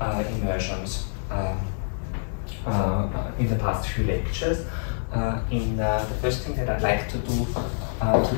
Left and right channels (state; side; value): silent; right; 56 dB below the other